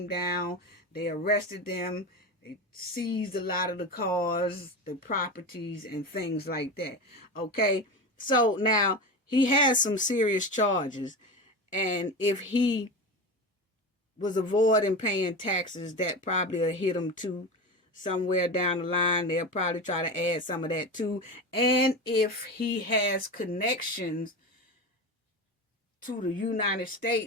down. They arrested them. They seized a lot of the cars, the properties, and things like that, okay? So now he has some serious charges, and if he was avoiding paying taxes, that probably will hit him too. Somewhere down the line, they'll probably try to add some of that too. And if he has connections to the United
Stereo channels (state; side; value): normal; both; correlation 0.24